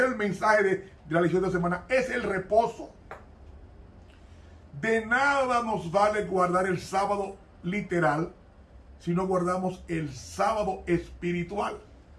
es el mensaje de la lección de semana. Es el reposo. De nada nos vale guardar el sábado literal si no guardamos el sábado espiritual.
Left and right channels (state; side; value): identical; both; correlation 1.00